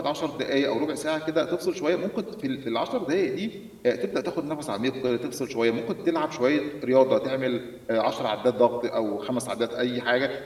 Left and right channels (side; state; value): both; identical; correlation 1.00